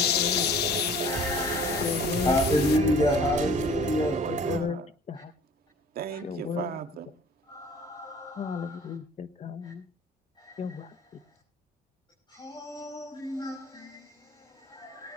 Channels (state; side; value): normal; both; correlation 0.49